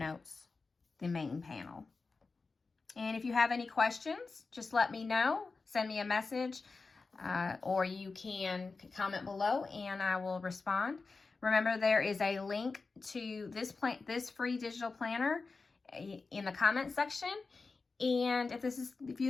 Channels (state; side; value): quieter; right; 4.1 dB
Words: the main panel. And if you have any questions, just let me know. Send me a message, or you can comment below and I will respond. Remember, there is a link to this free digital planner in the comment section. And if